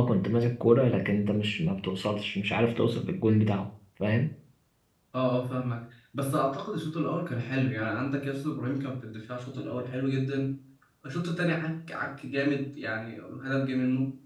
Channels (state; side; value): identical; both; correlation 1.00